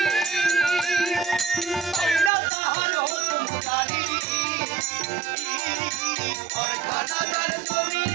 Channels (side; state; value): left; drops out; at 2.3 s